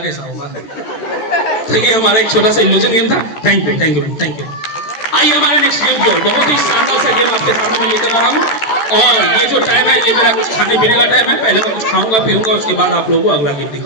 होगा? तो ये हमारा एक छोटा सा इल्यूजन गेम था। Thank you, thank you, thank you. आइए हमारे नेक्स्ट गेम की ओर। बहुत ही शानदार सा गेम आपके सामने मैं लेकर आ रहा हूँ, और ये जो टाइम है ये मेरा कुछ खाने पीने का टाइम है। पहले मैं कुछ खाऊंगा पीऊंगा, उसके बाद आप लोगों को अगला गेम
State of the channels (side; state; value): right; late; 14 ms